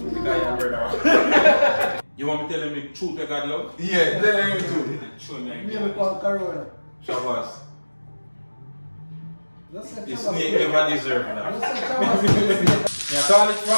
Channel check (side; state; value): both; inverted; correlation -1.00